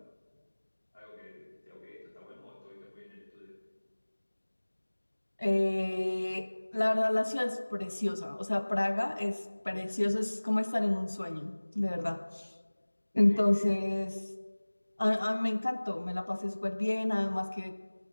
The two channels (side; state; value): both; inverted; correlation -1.00